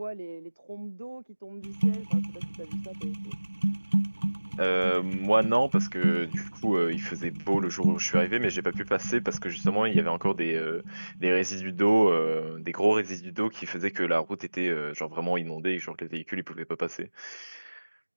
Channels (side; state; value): both; inverted; correlation -1.00